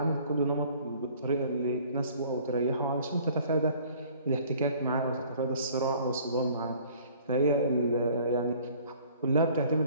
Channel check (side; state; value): both; inverted; correlation -0.54